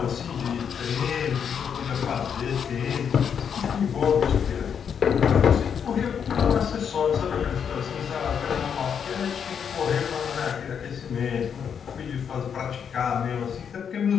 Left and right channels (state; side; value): quieter; right; 7.5 dB